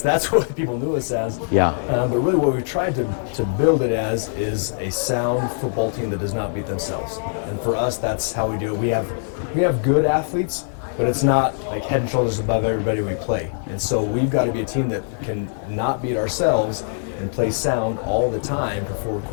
that's what people knew us as. Yeah. But really what we've tried to build it as is a sound football team that does not beat themselves. And for us, that's how we do it. We have good athletes, but it's not like head and shoulders above everybody we play. And so we've got to be a team that can not beat ourselves and play sound all the time for 4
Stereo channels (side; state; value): right; silent; digital silence